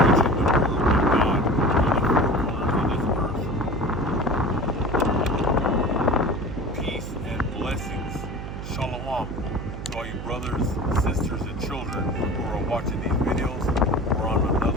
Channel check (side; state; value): right; noise; hum, 8 dB below the sound